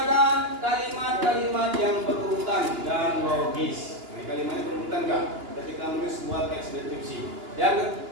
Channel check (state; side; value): late; left; 2.9 ms